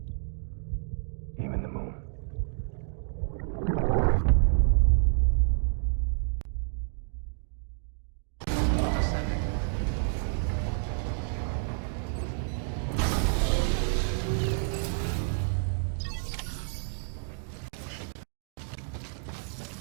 Even the moon.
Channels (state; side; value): silent; left; 58 dB below the other